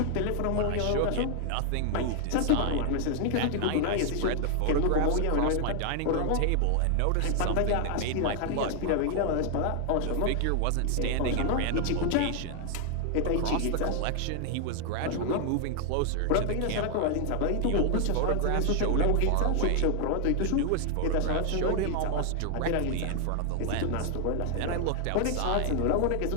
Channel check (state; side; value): different; both; correlation 0.00